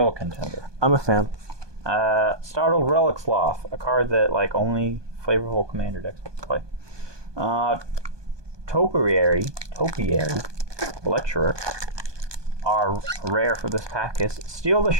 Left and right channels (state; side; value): late; left; 1.2 ms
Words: contender. I'm a fan. Startled Relic Sloth, a card that like only flavorful commander decks will play. Topiary Lecturer. Our rare for this pack is Steal the